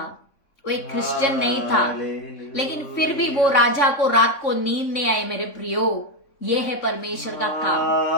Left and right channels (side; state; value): right; late; 3.5 ms